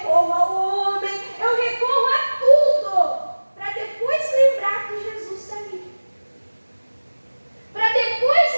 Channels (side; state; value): both; inverted; correlation -1.00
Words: ao homem, eu recorro a tudo, para depois lembrar que Jesus está ali. Para depois